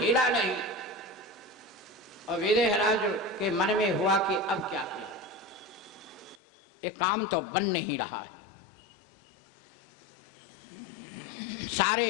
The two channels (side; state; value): right; drops out; at 6.4 s